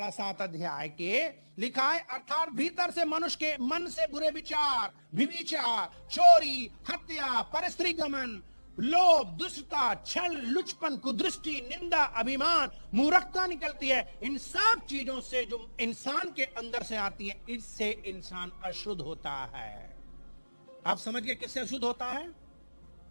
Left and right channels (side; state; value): both; inverted; correlation -1.00